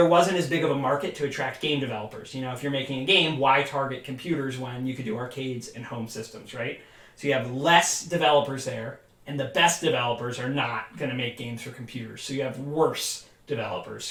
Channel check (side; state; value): both; identical; correlation 1.00